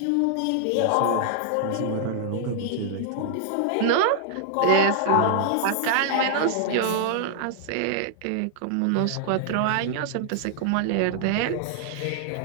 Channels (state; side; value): different; both; correlation -0.01